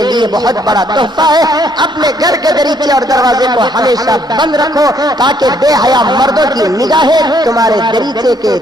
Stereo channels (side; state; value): both; normal; correlation 0.68